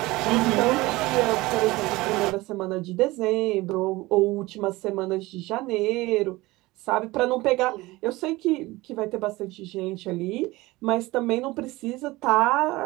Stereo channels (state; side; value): quieter; left; 20.3 dB